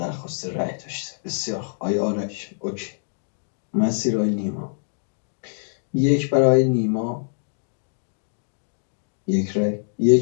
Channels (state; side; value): silent; right; digital silence